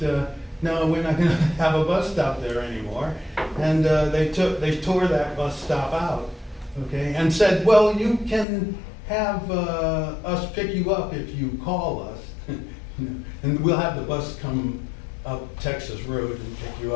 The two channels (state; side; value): drops out; right; at 8.5 s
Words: no, we're not gonna have a bus stop there anymore. And they tore that bus stop out, okay, and said, well, you can have us pick you up if you call us. And we'll have the bus come up Texas Road and pick you